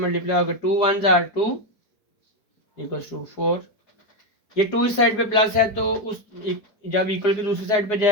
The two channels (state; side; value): late; right; 4.6 ms